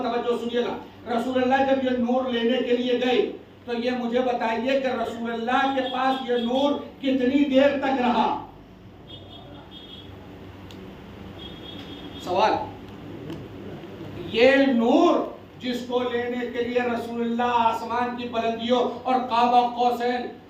توجہ سنیے گا۔ رسول اللہ جب یہ نور لینے کے لیے گئے تو یہ مجھے بتائیے کہ رسول اللہ کے پاس یہ نور کتنی دیر تک رہا؟ سوال۔ یہ نور جس کو لینے کے لیے رسول اللہ آسمان کی بلندیوں اور قاب قوسین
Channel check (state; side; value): identical; both; correlation 1.00